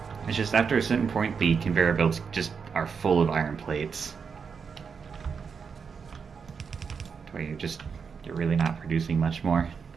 It's just after a certain point, the conveyor belts just are full of iron plates. Where you're really not producing much more.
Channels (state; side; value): quieter; left; 6.0 dB